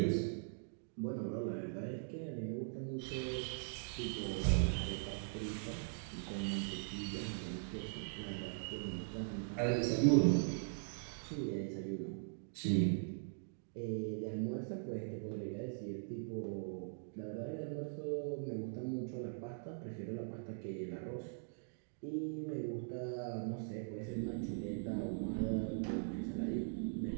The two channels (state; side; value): silent; left; digital silence